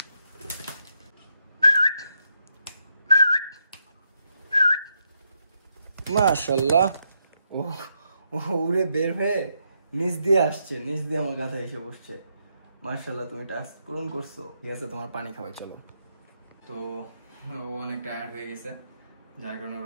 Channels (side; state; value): both; inverted; correlation -0.80